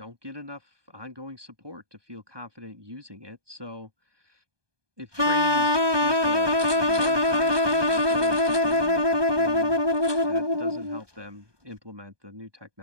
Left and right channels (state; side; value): late; left; 1.2 ms